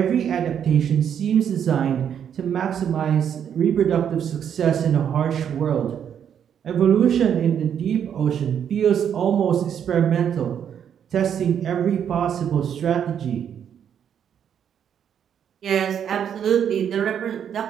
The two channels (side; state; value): left; quieter; 8.6 dB